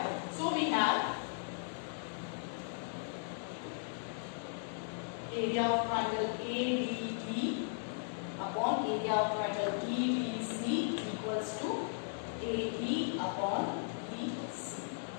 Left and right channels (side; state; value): right; silent; digital silence